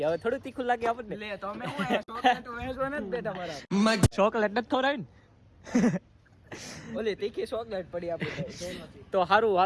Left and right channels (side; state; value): both; identical; correlation 1.00